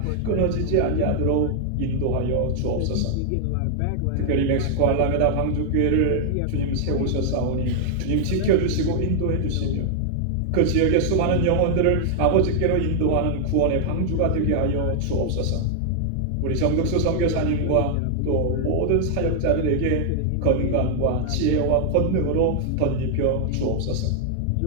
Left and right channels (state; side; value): different; both; correlation 0.00